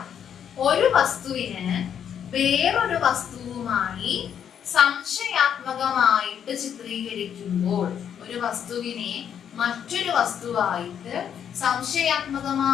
ഒരു വസ്തുവിന് വേറൊരു വസ്തുവുമായി സംശയാത്മകമായിട്ട് ചിത്രീകരിക്കുമ്പോൾ, ഒരു വസ്തുവിനെ മറ്റൊരു വസ്തുവായിട്ട്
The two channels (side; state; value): right; quieter; 8.6 dB